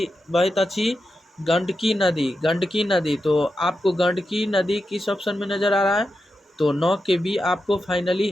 बहैत अछि, गंडकी नदी, गंडकी नदी। तो आपको गंडकी नदी किस ऑप्शन में नज़र आ रहा है, तो 9 के बी आपको फाइनली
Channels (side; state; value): both; normal; correlation 0.89